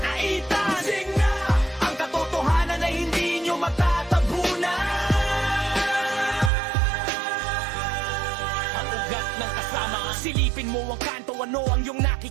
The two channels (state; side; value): drops out; left; at 6.5 s